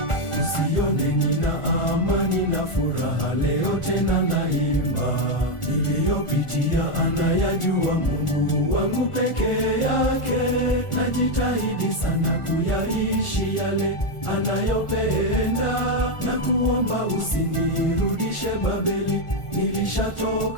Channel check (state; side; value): late; right; 1.4 ms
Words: usione nina amani na furaha leo tena naimba, niliyopitia anayajua Mungu wangu pekee yake, najitahidi sana kuyaishi yale anayopenda, na kuomba usinirudishe Babeli,